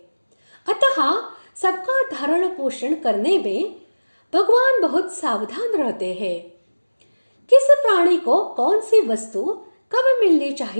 अतः सबका धारण पोषण करने में भगवान बहुत सावधान रहते हैं। किस प्राणी को कौन सी वस्तु कब मिलनी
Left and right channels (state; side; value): inverted; both; correlation -1.00